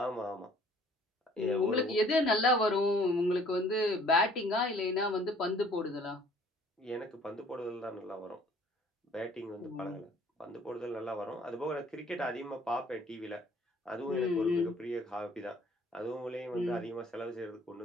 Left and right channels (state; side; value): normal; both; correlation 0.56